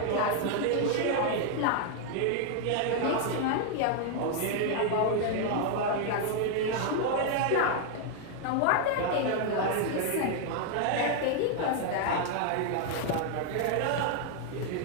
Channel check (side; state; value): both; different; correlation 0.00